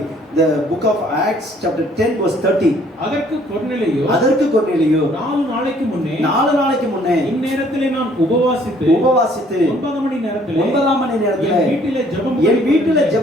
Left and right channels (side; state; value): both; normal; correlation 0.61